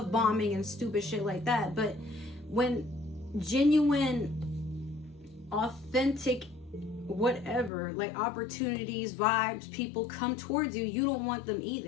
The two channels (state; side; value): drops out; right; at 7.7 s